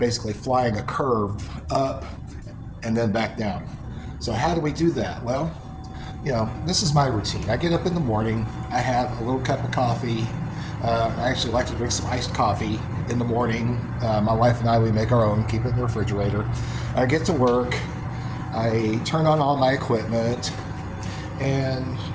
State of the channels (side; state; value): both; identical; correlation 1.00